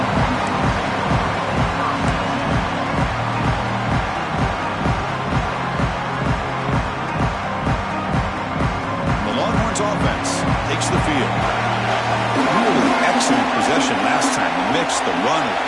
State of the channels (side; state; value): both; identical; correlation 1.00